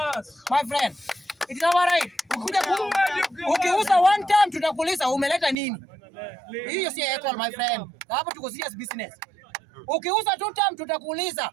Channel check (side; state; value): left; drops out; at 5.6 s